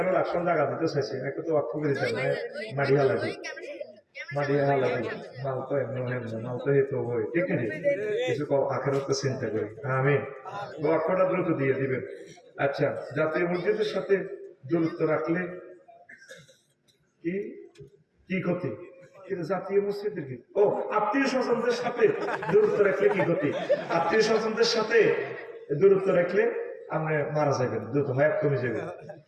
রাষ্ট্র জায়গা দিতে চাইছি, একটু তো বাক্য করে দিতে মাড়িয়া লাগে মারিয়া লাগে মাল তো এমন মাল তো হেতু হয়, ঠিক আছে? কিছু আখেরাতে চিন্তা করি। আমি বাক্যটা দ্রুত দিয়ে দিবেন। আচ্ছা, জাতীয় মসজিদের সাথে দূরত্ব রাখলে কি কি ক্ষতি? কিন্তু জাতীয় মসজিদের কি ও আত্মীয় স্বজনদের সাথে দূরত্ব রাখলে কি ক্ষতি? আত্মীয় স্বজনদের সাথে দূরত্ব রাখলে আপনি মারা যাবেন, দ্রুত হায়াত কমে যাবে,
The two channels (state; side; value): identical; both; correlation 1.00